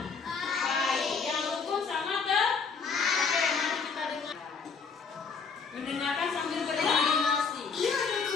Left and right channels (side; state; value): right; quieter; 5.3 dB